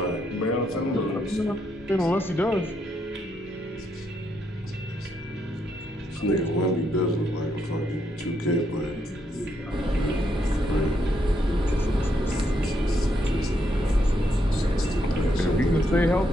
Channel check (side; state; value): both; normal; correlation 0.77